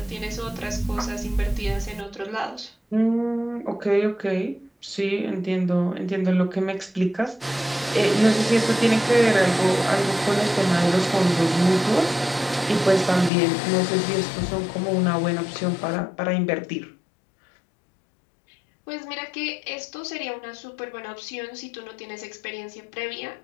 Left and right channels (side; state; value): right; drops out; at 13.3 s